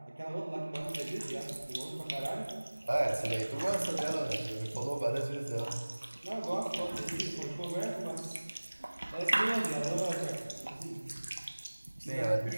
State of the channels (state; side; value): inverted; both; correlation -1.00